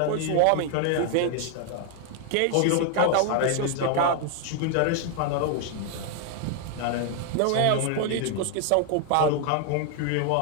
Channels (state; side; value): different; both; correlation 0.00